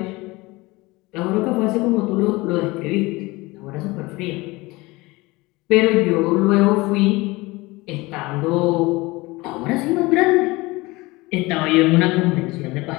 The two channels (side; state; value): right; quieter; 22.2 dB